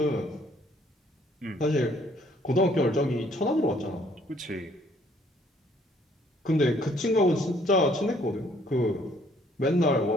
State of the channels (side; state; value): both; normal; correlation 0.63